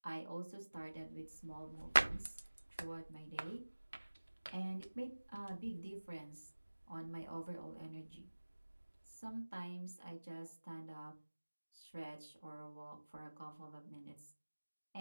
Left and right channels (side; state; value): both; inverted; correlation -1.00